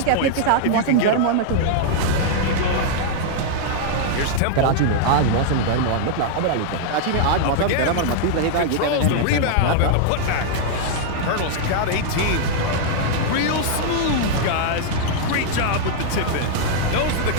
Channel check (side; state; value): both; different; correlation -0.01